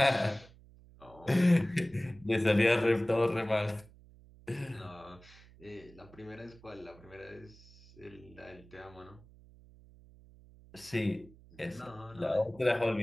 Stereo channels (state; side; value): noise; right; hum, 23 dB below the sound